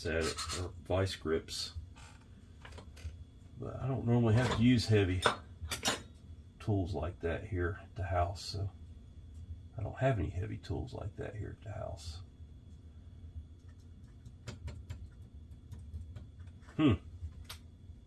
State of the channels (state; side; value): identical; both; correlation 1.00